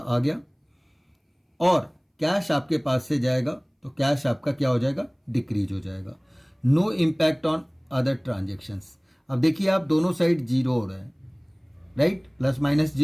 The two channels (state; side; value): identical; both; correlation 1.00